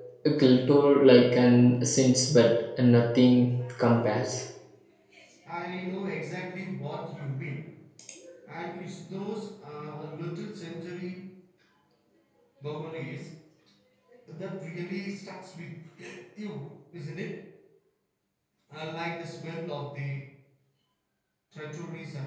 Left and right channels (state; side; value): identical; both; correlation 1.00